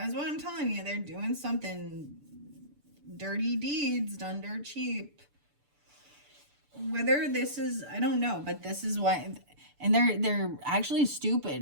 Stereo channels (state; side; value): late; left; 6.9 ms